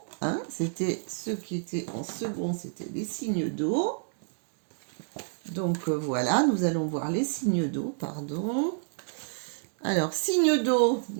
Hein, c'était ceux qui étaient en second, c'était les signes d'eau. Donc voilà, nous allons voir les signes d'eau, pardon. Alors, signes d'eau,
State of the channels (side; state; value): left; silent; digital silence